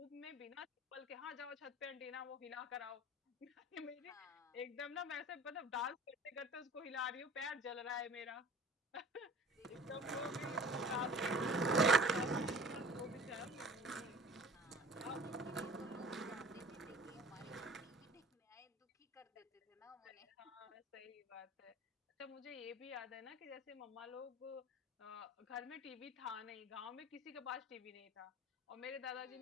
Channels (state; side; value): normal; both; correlation 0.44